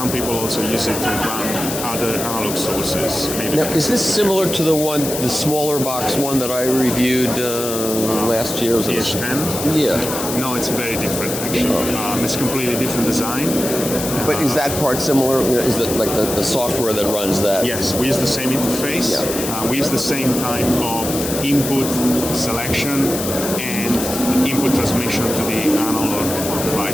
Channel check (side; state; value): left; noise; hiss, 6 dB below the sound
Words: people also use it to run other analog sources. Maybe Now, is this similar to the smaller box one that I reviewed last year? Was it PH10? Yeah. No, it's very different actually. It's completely different design. But is that part similar? You know, is it like the software that runs that? Yes, we use the same interface. Yeah. We use the same type of input selection and input transmission to the analog